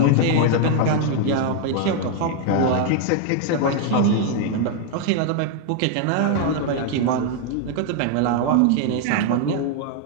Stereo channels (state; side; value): different; both; correlation 0.00